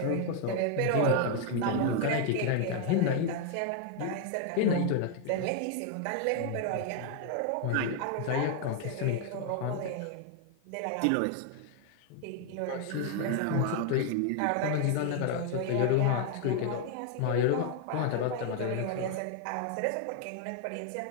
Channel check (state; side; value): different; both; correlation 0.00